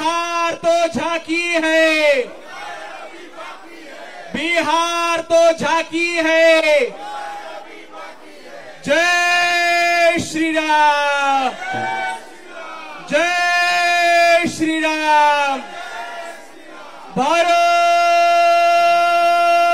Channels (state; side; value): identical; both; correlation 1.00